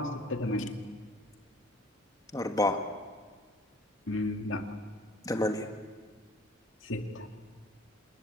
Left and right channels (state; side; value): normal; both; correlation 0.52